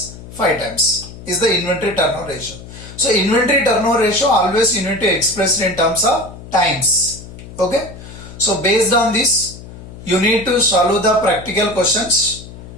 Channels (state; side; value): noise; left; hum, 15 dB below the sound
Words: 5 times is the inventory turnover ratio. So inventory turnover ratio always you need to express in terms of times. Okay. So based on this, you need to solve the practical questions